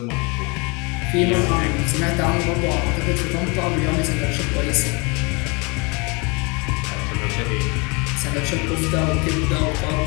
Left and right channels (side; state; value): right; quieter; 29.6 dB